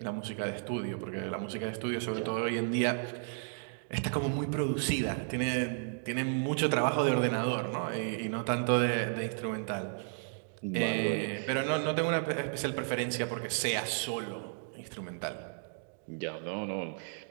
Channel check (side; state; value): left; silent; digital silence